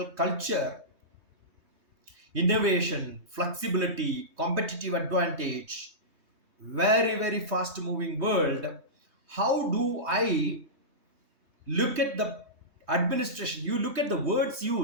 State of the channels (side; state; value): left; late; 3.2 ms